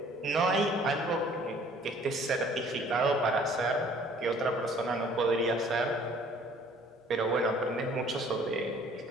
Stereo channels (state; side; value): normal; both; correlation 0.55